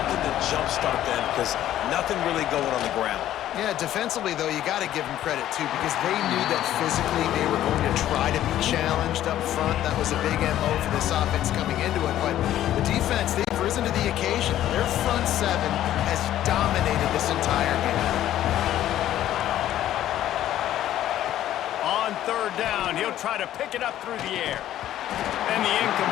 to jumpstart them, because nothing really going on the ground. Yeah, defensively, though, you got to give them credit, too, because they knew that physically they were going to try to be challenged up front. That was a big MO for this offense coming into it. But the defense, they've risen to the occasion. Their front seven has dominated this entire game. On third down, he'll try to pick it up through the air. And the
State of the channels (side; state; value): right; quieter; 12.6 dB